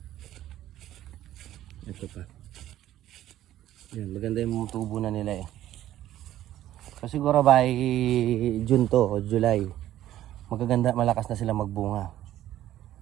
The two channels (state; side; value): quieter; left; 13.1 dB